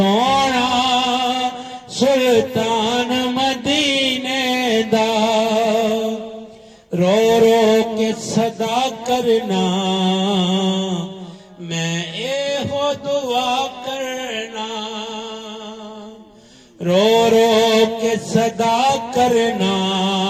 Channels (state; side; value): identical; both; correlation 1.00